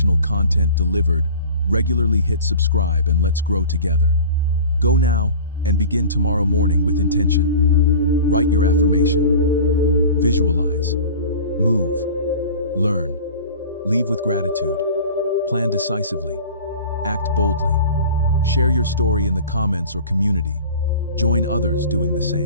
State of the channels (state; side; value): inverted; both; correlation -0.40